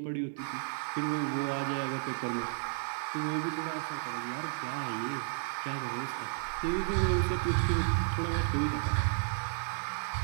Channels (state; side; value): silent; left; digital silence